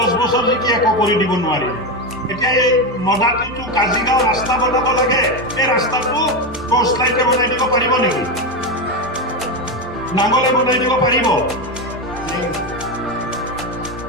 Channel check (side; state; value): right; noise; rumble, 25 dB below the sound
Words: বছৰ জিকি একো কৰি দিব নোৱাৰি। এতিয়া এই মদাটিটো কাজিগাঁও ৰাস্তা বনাব লাগে, এই ৰাস্তাটো টৰ্চ লাইটে বনাই দিব পাৰিব নেকি? নাঙ্গলে বনাই দিব পাৰিব?